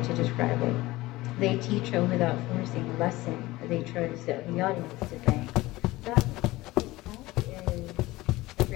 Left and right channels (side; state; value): right; quieter; 19.0 dB